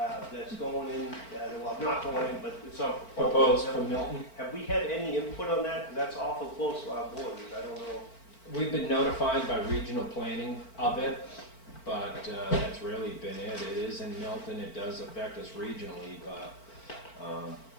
that's going in, well, not going in, but it's on. Proposed from Milton. Have we had any input on that? That's awful close to our borders, I don't know. We've been notified by regional planning of it, but that's really been it. It is in Milton, it does affect us regionally, but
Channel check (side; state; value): right; late; 4.4 ms